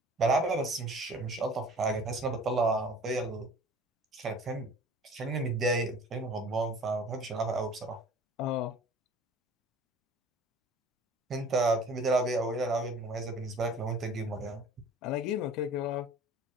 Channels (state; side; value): normal; both; correlation 0.47